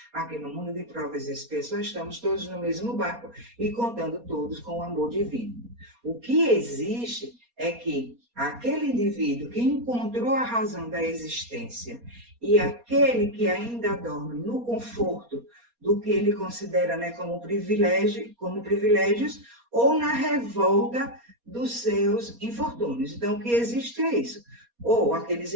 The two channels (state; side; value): late; left; 4.2 ms